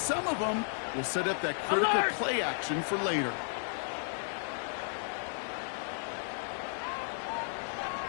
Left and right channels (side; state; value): right; silent; digital silence